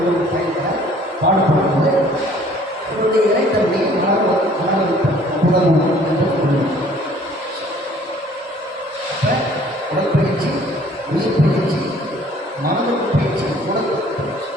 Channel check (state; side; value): normal; both; correlation 0.55